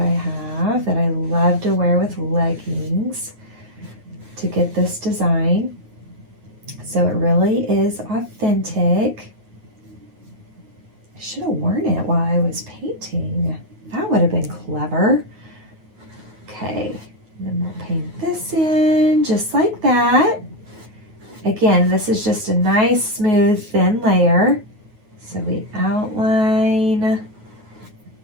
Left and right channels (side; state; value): left; late; 9.4 ms